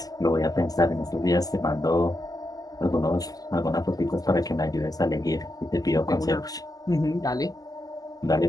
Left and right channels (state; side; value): late; right; 0.18 ms